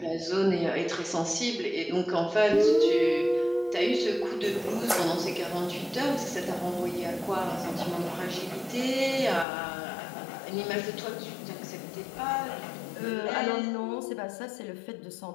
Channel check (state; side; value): drops out; right; at 9.5 s